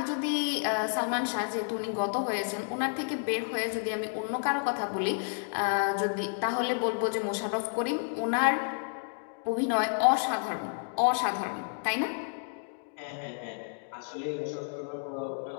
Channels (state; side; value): silent; right; 57 dB below the other